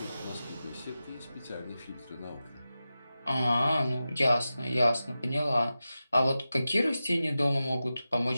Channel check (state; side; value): inverted; both; correlation -0.93